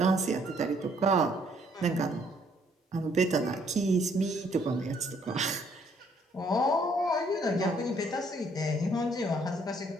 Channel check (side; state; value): both; normal; correlation 0.66